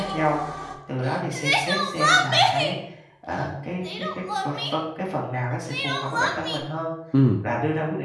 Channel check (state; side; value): identical; both; correlation 1.00